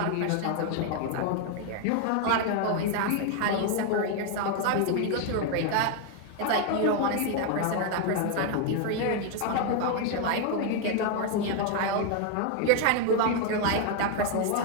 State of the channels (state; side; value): different; both; correlation 0.01